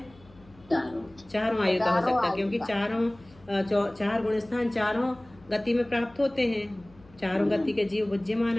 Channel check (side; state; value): left; noise; hum, 26 dB below the sound